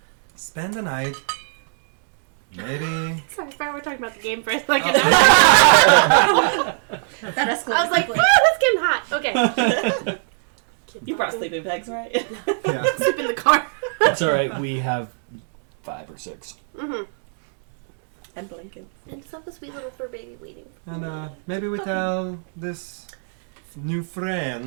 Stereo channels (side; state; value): left; silent; 64 dB below the other